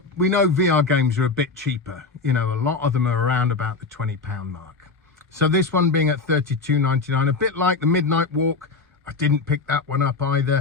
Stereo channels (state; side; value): quieter; right; 4.2 dB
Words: we know VR games are a bit cheaper. You know, a lot of them are around about the £20 mark. So this one being at $32.99, a bit like the Midnight Walk. I didn't pick that one up